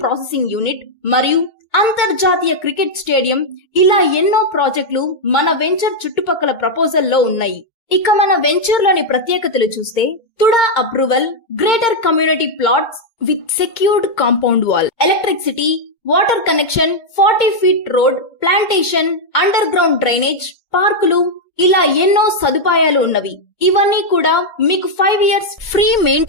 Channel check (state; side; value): late; right; 2.2 ms